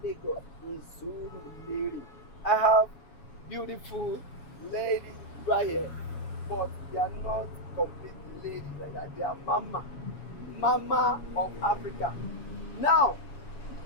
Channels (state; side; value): late; right; 7.2 ms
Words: Lagos in Seun. I have beautiful ladies right here, but they are not complete ladies like that. They are mama of Africa. Now,